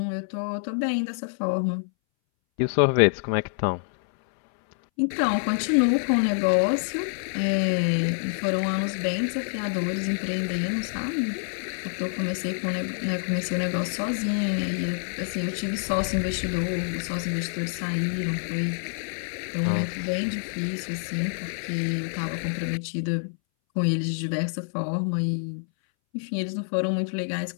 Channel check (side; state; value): right; silent; 60 dB below the other